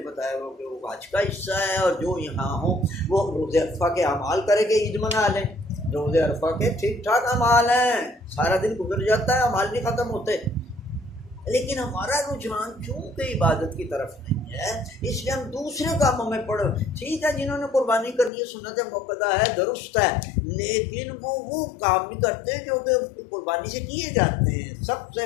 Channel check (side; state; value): right; drops out; at 18.3 s